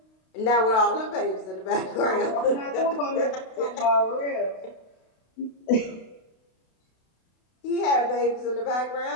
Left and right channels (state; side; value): late; right; 32 ms